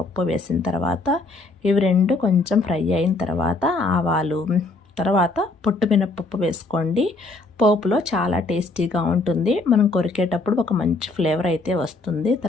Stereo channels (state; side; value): quieter; right; 3.3 dB